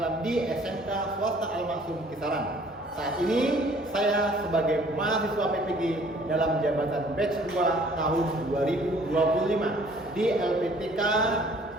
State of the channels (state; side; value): normal; both; correlation 0.56